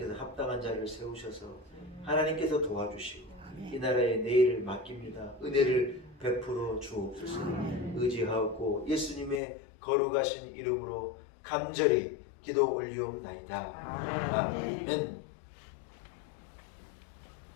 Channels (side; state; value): right; drops out; at 9.4 s